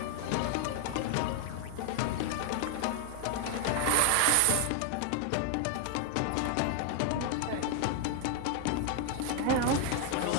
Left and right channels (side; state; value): both; different; correlation 0.01